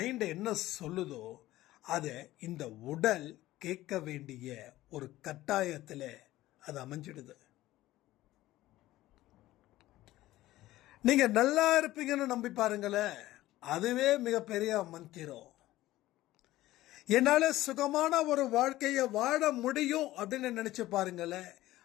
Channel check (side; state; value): right; quieter; 16.1 dB